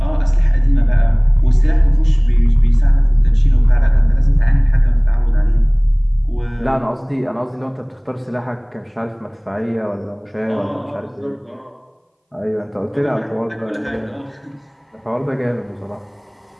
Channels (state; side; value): identical; both; correlation 1.00